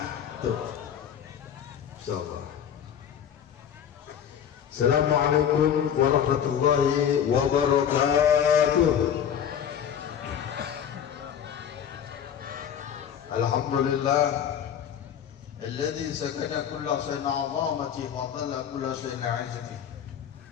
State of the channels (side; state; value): right; quieter; 8.9 dB